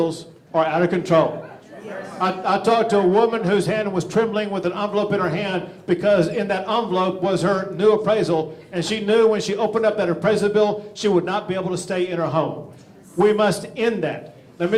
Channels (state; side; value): identical; both; correlation 1.00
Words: are out of control. I talked to a woman whose hand was trembling with an envelope in her hand because in that envelope was her new appraisal, and she knew when she opened up that appraisal bill, she would not be able to stay in her home. We must end that. Let me